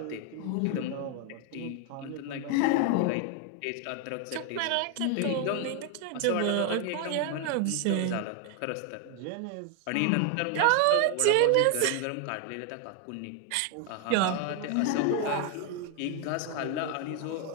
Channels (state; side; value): different; both; correlation 0.01